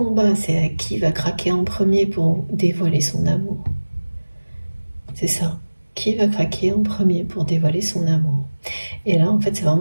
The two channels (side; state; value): both; inverted; correlation -1.00